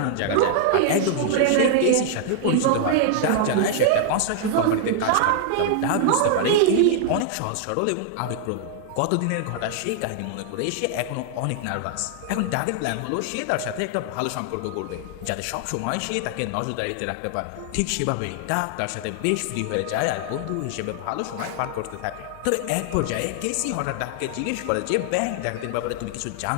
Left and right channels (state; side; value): different; both; correlation 0.00